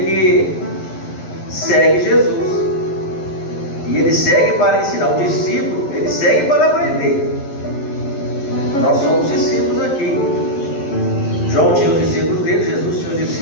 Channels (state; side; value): late; right; 11 ms